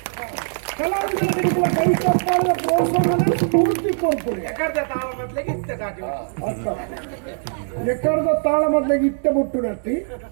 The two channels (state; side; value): silent; left; digital silence